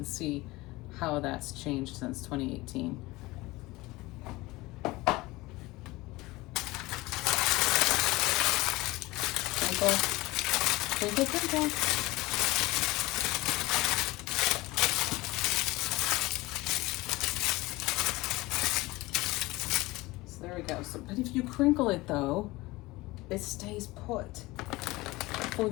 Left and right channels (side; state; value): right; quieter; 20.7 dB